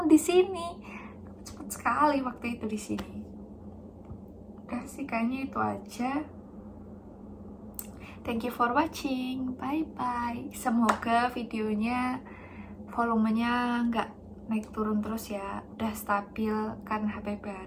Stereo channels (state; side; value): identical; both; correlation 1.00